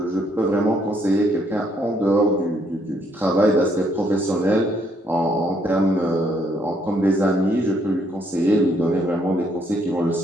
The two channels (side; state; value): both; normal; correlation 0.70